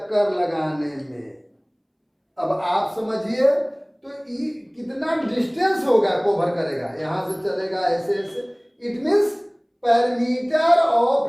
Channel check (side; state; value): both; identical; correlation 1.00